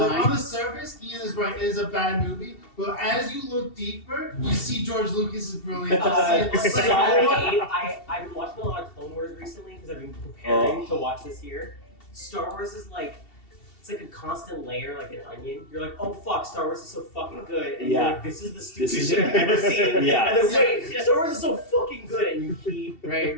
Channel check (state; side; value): late; right; 2.7 ms